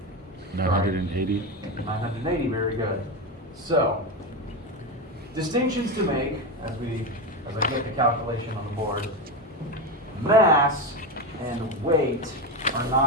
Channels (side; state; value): both; normal; correlation 0.15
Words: 980. 980, very good. So, distinctions to make as I get the calculation on the board. Mass and weight are